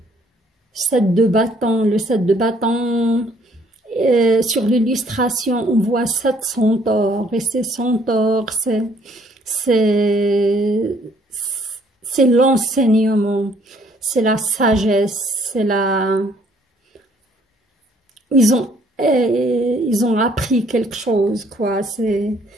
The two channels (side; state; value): both; normal; correlation 0.63